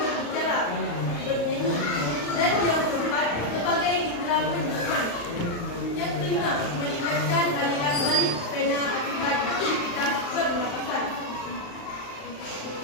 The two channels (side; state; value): right; late; 35 ms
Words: bernyanyi. Dan yang keempat, sebagai indera penciuman. Yang kelima, meningkatkan aliran balik vena akibat aktivitas pernapasan.